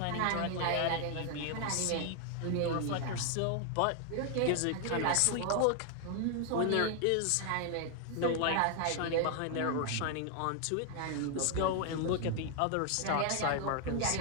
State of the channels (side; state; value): both; different; correlation 0.00